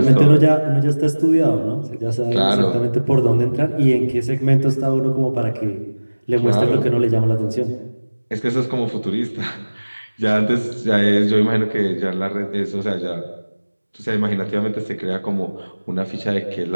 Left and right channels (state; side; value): inverted; both; correlation -1.00